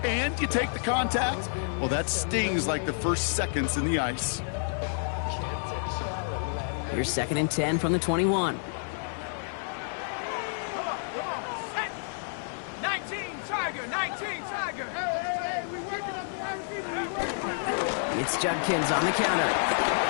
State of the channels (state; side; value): silent; right; 58 dB below the other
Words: and you take the contact, well, that stings like the first seconds in the ice. Here's second and 10 from the 21. 19 Tiger! Hey, we working up the wide receiver. It's Judkins on the counter.